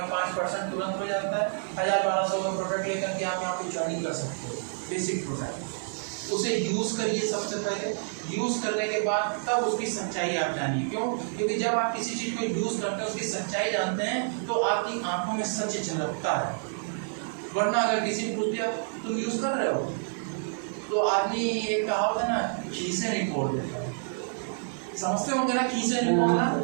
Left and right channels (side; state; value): left; silent; digital silence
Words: 5% तुरंत हो जाता है। 1000-1200 का प्रोडक्ट लेकर के आप यहाँ पे ज्वाइनिंग कर सकते हो, बेसिक प्रोडक्ट। उसे यूज़ करिए सबसे पहले, यूज़ करने के बाद तब उसकी सच्चाई आप जानिए। क्यों? क्योंकि जब आप किसी चीज़ को यूज़ करते हैं, उसकी सच्चाई जानते हैं, तो आपकी आंखों में सच झलकता है। वरना अगर किसी ने पूछ दिया तुम यूज़ कर रहे हो, तो आदमी एक कहावत है ना, खीसे नहीं फोड़ देता है, समझते होंगे ना, खीसे नहीं फोड़ना